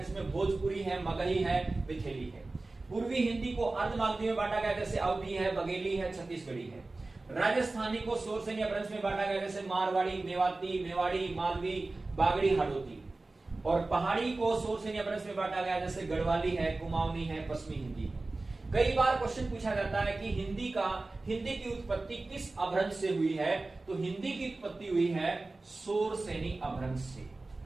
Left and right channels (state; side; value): quieter; left; 3.2 dB